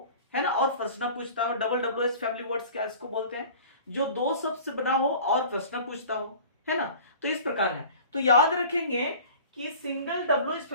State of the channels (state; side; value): inverted; both; correlation -0.43